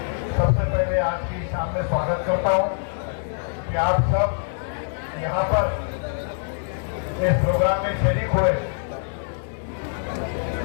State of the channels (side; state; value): right; silent; 62 dB below the other